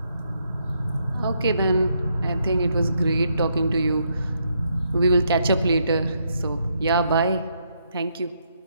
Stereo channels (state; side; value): inverted; both; correlation -0.76